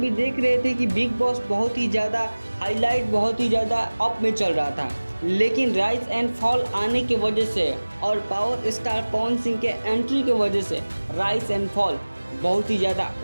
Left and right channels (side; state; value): both; inverted; correlation -1.00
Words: देख रहे थे कि बिग बॉस बहुत ही ज़्यादा हाईलाइट, बहुत ही ज़्यादा अप में चल रहा था, लेकिन राइज एंड फॉल आने की वजह से और पावर स्टार पवन सिंह के एंट्री की वजह से राइज एंड फॉल बहुत ही ज़्यादा